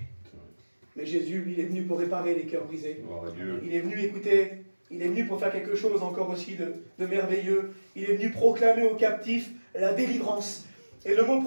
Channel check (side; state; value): both; inverted; correlation -1.00